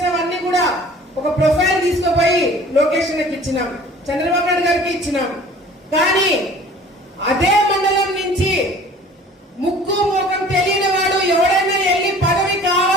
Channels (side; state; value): both; normal; correlation 0.48